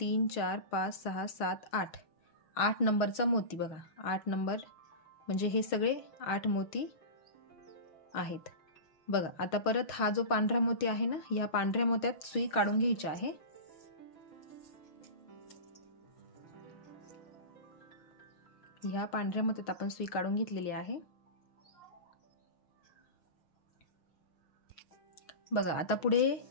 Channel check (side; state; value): right; late; 6.3 ms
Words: 4 5 6 7 8 8 नंबरचा मोती बघा. 8 नंबर म्हणजे हे सगळे 8 मोती आहेत बघा. आता परत हा जो पांढरा मोती आहे ना, या पांढऱ्या मोत्यात सुई काढून घ्यायची आहे. ह्या पांढऱ्या मोत्यात आपण सुई काढून घेतलेली आहे बघा. आता पुढे